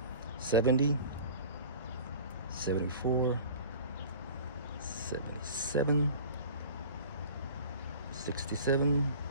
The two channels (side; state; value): both; inverted; correlation -0.42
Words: 70, 74, 77, 67,